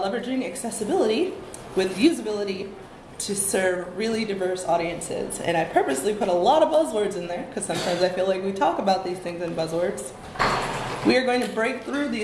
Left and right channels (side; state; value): both; identical; correlation 1.00